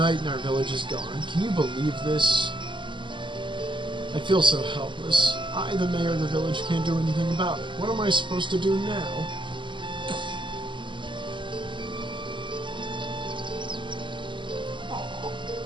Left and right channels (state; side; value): late; left; 0.24 ms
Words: and our village is gone. Can you believe this? I feel so helpless. I, the mayor of the village, can't do anything about it. What am I supposed to do now?